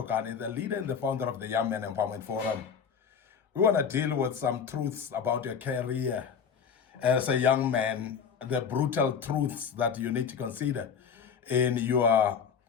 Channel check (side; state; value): right; quieter; 6.8 dB